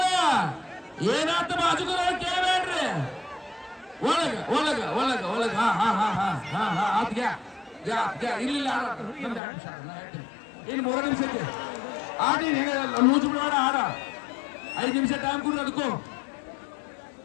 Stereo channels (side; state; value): right; drops out; at 9.4 s